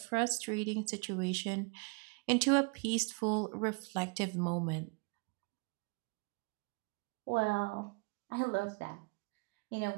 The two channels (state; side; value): quieter; left; 32.1 dB